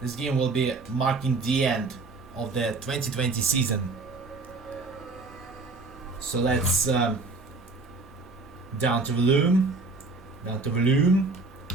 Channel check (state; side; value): quieter; left; 3.6 dB